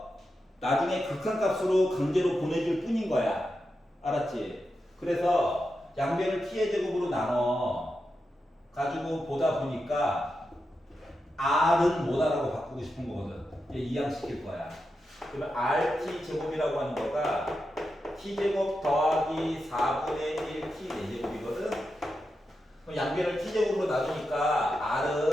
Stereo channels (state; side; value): normal; both; correlation 0.88